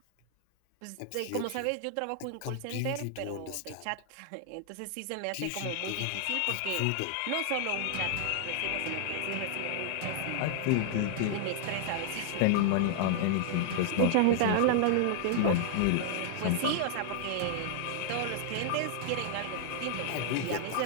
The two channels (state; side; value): different; both; correlation 0.00